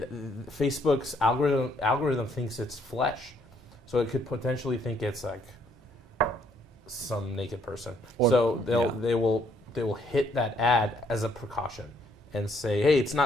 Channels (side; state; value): both; normal; correlation 0.68